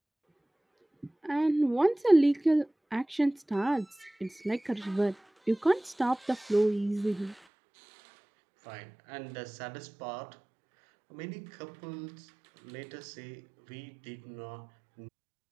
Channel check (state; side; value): drops out; left; at 7.4 s